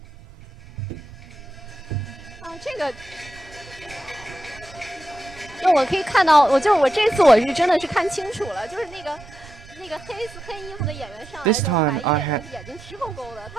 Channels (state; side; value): normal; both; correlation 0.87